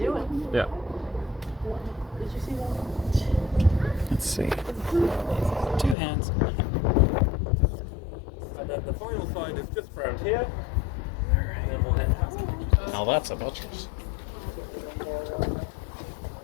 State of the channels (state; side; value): drops out; right; at 6.0 s